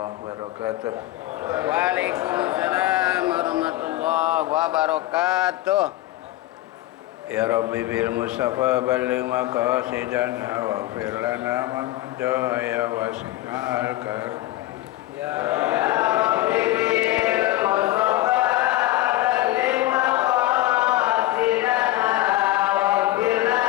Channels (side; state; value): right; quieter; 16.3 dB